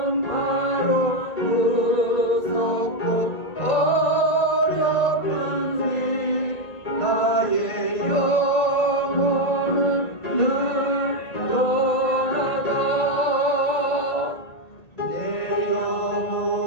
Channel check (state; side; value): late; right; 1.9 ms